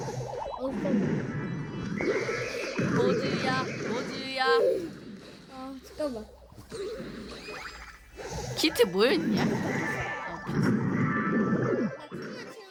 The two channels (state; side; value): identical; both; correlation 1.00